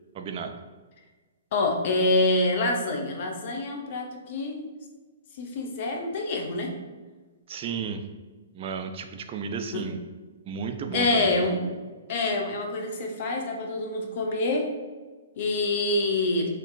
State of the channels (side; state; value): both; inverted; correlation -0.42